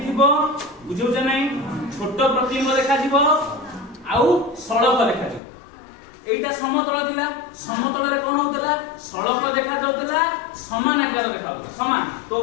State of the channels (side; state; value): right; drops out; at 5.4 s